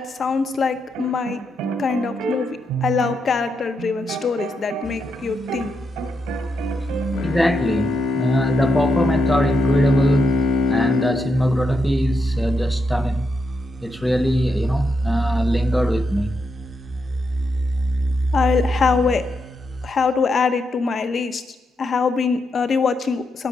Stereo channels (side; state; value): both; normal; correlation 0.82